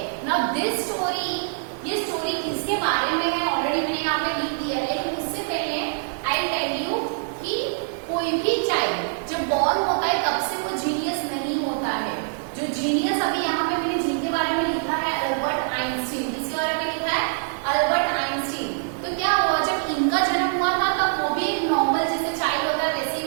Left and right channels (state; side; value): silent; left; 58 dB below the other